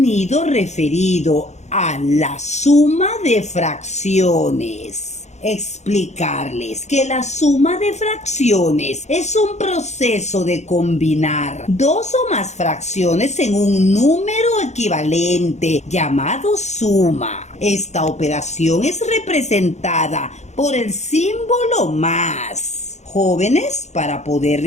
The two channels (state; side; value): late; right; 0.33 ms